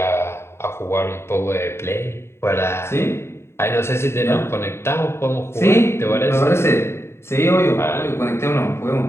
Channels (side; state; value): right; late; 0.12 ms